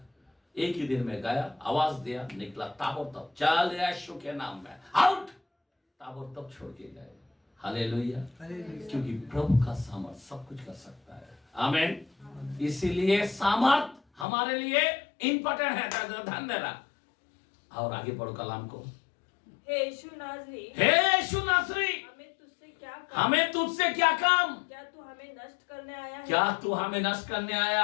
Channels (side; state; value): right; drops out; at 14.2 s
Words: एक ही दिन में गया, आवाज दिया, निकला ताबड़तोड़, चल यीशु के नाम में आउट, ताबड़तोड़ छोड़ के गए। हालेलुया। क्योंकि प्रभु का सामर्थ सब कुछ कर सकता है। आमीन। इसीलिए सामर्थ हमारे लिए इंपॉर्टेंट है। ध्यान देना। और आगे पढ़ो कलाम को। हे यीशु नासरी, हमें तुझसे क्या काम? क्या तू हमें नष्ट करने आया है? क्या तू हमें नष्ट करने